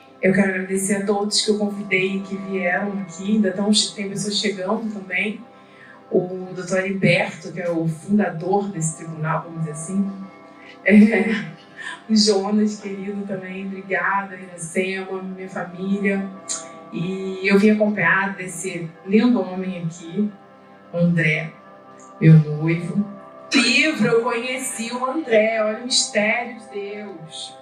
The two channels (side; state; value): both; identical; correlation 1.00